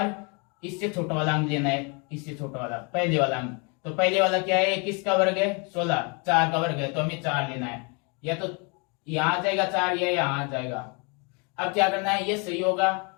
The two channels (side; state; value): right; quieter; 32.8 dB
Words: इससे छोटा वाला अंक लेना है, इससे छोटा वाला पहले वाला अंक। तो पहले वाला क्या है, किसका वर्ग है 16, 4 का वर्ग है। तो हमें 4 लेना है। या तो यहाँ आ जाएगा 4 या यहाँ आ जाएगा। अब क्या करना है, ये सही होगा